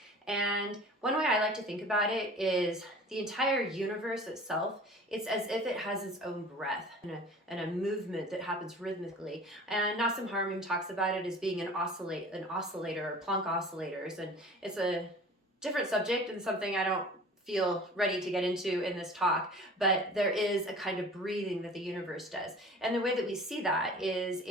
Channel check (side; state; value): both; normal; correlation 0.43